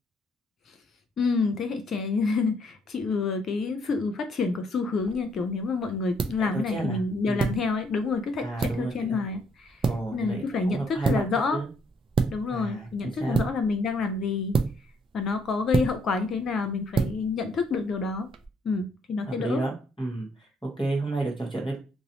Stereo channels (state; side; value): normal; both; correlation 0.70